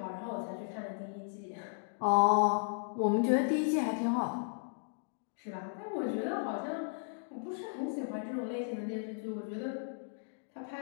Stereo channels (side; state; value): right; silent; digital silence